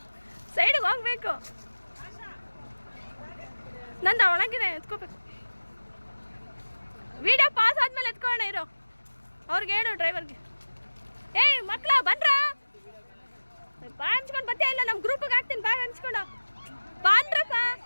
ಸೈಡಿಗೆ ಹೋಗ್ಬೇಕು. ನಂದು ಒಳಗಿದೆ, ಎತ್ಕೋಬೇಕು. ವಿಡಿಯೋ ಪಾಸ್ ಆದ್ಮೇಲೆ ಎತ್ಕೊಳ್ಳೋಣ ಇರೋ. ಅವ್ರಿಗೆ ಹೇಳು ಡ್ರೈವರ್ಗೆ. ಮಕ್ಕಳ ಬನ್ರ. ಬಾ ಹಂಚ್ಕೊಂಡು ಬತ್ತೇ ಇಲ್ಲ. ನಮ್ಮ ಗ್ರೂಪಿಗೆ ಹಾಕ್ತೀನಿ. ಬಾ ಹಂಚ್ಕೊಂಡು ಬಾನ್ರಪ್ಪ.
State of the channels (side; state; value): both; inverted; correlation -1.00